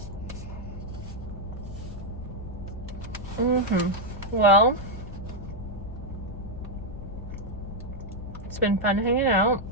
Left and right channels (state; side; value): noise; left; rumble, 12 dB below the sound